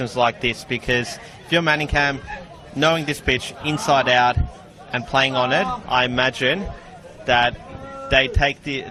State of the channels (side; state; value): both; identical; correlation 1.00